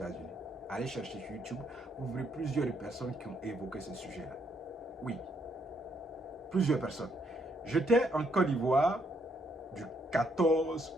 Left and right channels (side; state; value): both; normal; correlation 0.73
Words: Allez chercher sur YouTube, vous verrez plusieurs personnes qui ont évoqué ce sujet-là. Oui, plusieurs personnes. J'étais en Côte d'Ivoire du 14